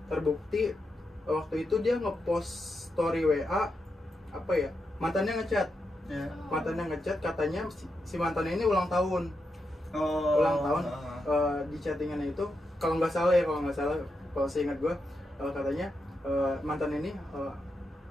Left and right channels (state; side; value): normal; both; correlation 0.85